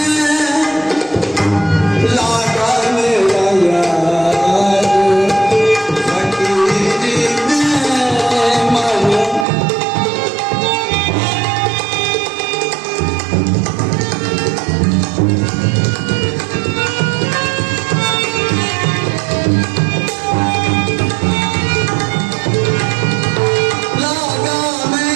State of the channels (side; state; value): left; drops out; at 9.5 s